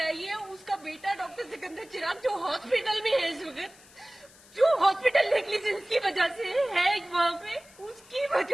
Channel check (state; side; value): noise; left; hiss, 24 dB below the sound